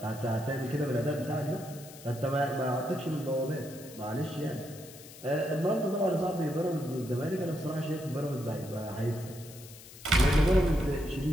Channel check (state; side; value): noise; left; hiss, 18 dB below the sound